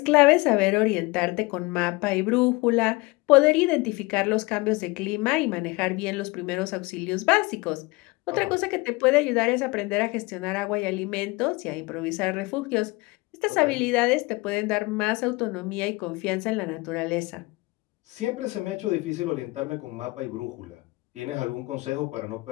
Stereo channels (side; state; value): right; quieter; 23.6 dB